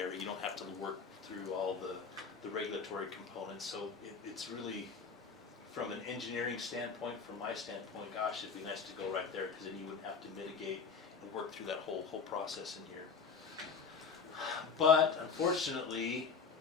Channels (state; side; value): quieter; right; 5.5 dB